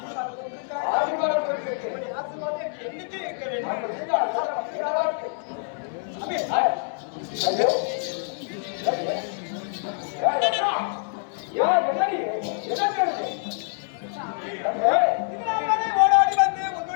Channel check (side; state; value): right; silent; 61 dB below the other